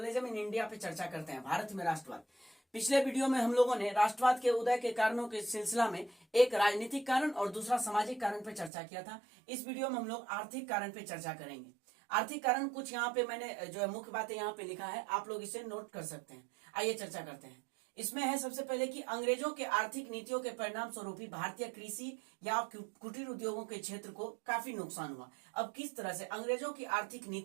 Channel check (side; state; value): left; drops out; at 8.7 s